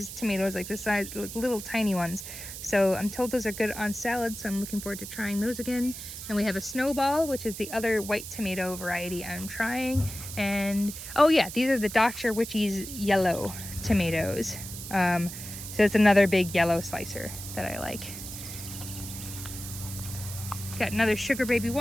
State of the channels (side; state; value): right; noise; hiss, 10 dB below the sound